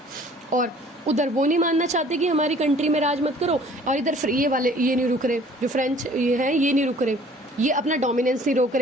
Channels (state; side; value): normal; both; correlation 0.53